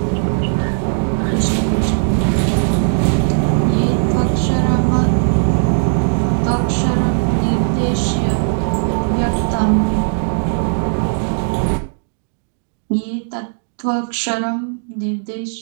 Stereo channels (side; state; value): left; silent; digital silence